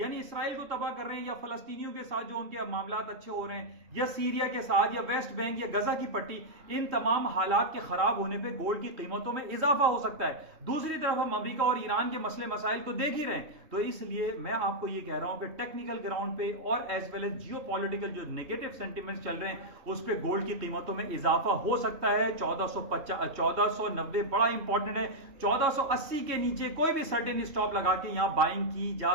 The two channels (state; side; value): late; left; 3.1 ms